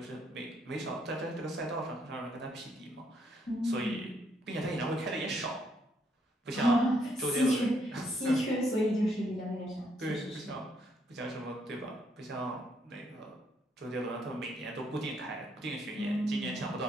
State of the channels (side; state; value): both; normal; correlation 0.72